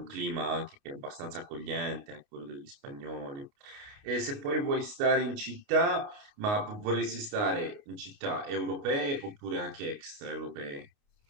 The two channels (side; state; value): left; late; 29 ms